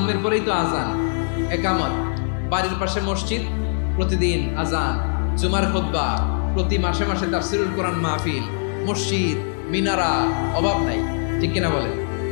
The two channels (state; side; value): silent; right; 59 dB below the other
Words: পরেই তো আজান, একামত, বাড়ির পাশে মসজিদ, প্রতিদিন আজান, জুমার খুতবা, প্রতি মাসে মাসে তাফসীরুল কোরআন মাহফিল, মসজিদ, মিনারা, অভাব নাই, ঠিক কিনা বলেন?